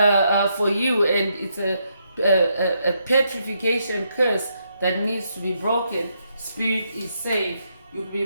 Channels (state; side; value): inverted; both; correlation -0.78